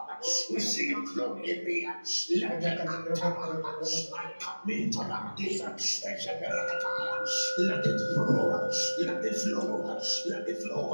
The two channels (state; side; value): inverted; both; correlation -1.00